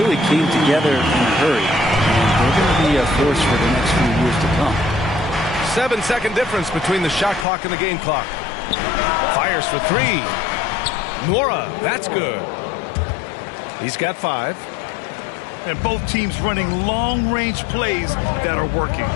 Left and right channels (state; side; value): drops out; right; at 7.5 s